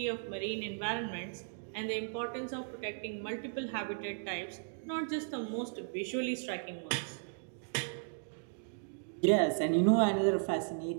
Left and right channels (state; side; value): silent; left; digital silence